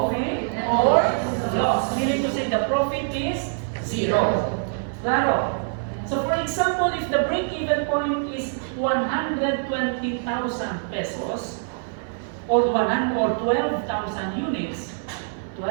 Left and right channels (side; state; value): left; silent; 60 dB below the other